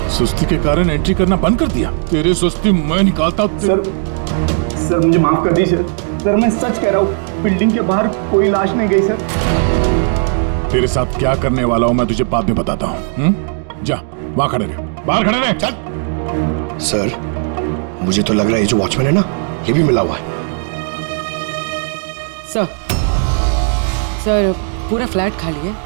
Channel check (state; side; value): silent; left; 55 dB below the other